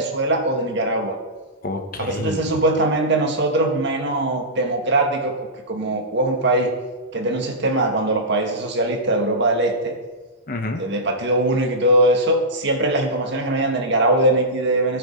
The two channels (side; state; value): both; normal; correlation -0.15